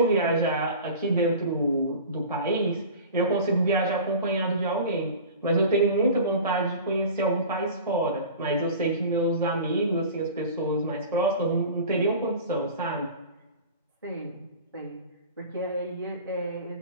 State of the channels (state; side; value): inverted; both; correlation -0.37